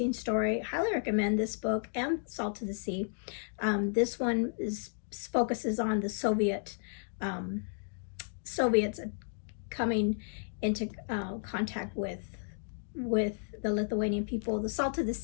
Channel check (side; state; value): right; silent; digital silence